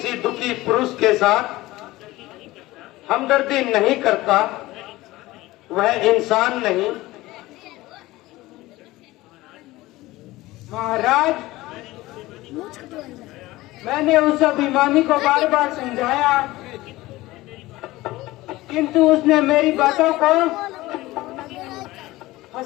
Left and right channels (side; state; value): right; quieter; 18.5 dB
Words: दुखी पुरुष के साथ हमदर्दी नहीं करता वह इंसान नहीं। महाराज, मैंने उस अभिमानी को बार बार समझाया, किंतु उसने मेरी बातों को